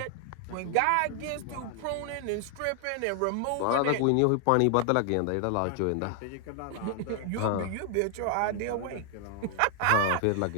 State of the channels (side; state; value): both; different; correlation 0.00